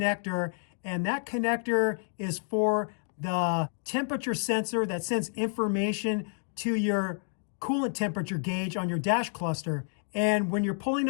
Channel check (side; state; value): right; silent; 58 dB below the other